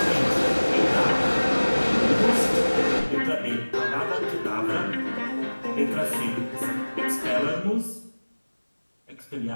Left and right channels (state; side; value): inverted; both; correlation -1.00